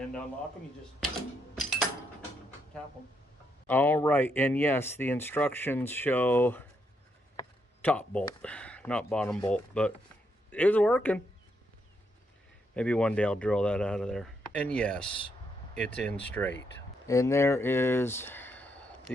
to unlock them, you just tap them. All right, and yes, the instructions show top bolt, not bottom bolt, but it's working. Maybe one day I'll drill that out of there. And yes, it's in straight. And there is,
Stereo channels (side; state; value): both; normal; correlation 0.78